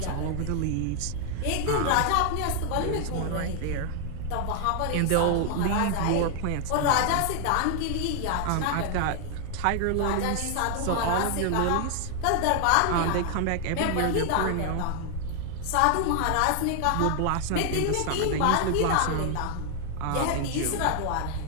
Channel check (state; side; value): different; both; correlation 0.00